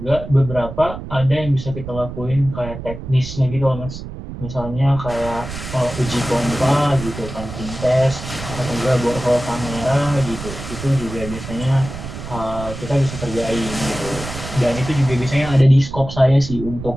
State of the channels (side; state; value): right; noise; rumble, 10 dB below the sound